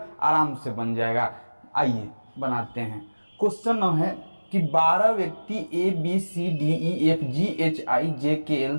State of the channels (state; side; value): inverted; both; correlation -1.00